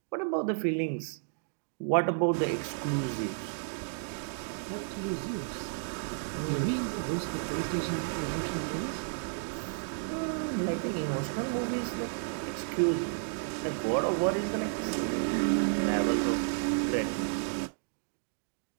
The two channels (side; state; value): left; silent; digital silence